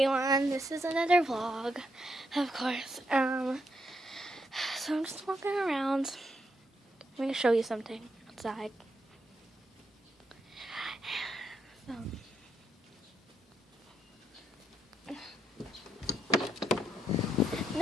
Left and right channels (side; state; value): both; normal; correlation 0.78